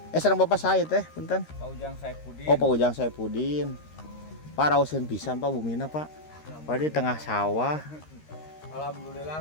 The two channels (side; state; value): right; late; 13 ms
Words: Sareng bapak saya teh, punten. Pak Ujang Saipudin. Oh, Pak Ujang Saipudin. Pak rauseun pisan Pak bumina Pak. Pak di tengah sawah.